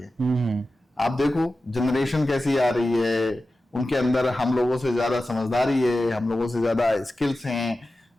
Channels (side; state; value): both; normal; correlation 0.94